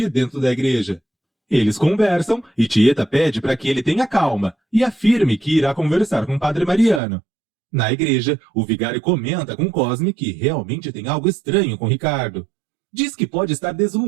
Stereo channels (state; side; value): drops out; left; at 7.0 s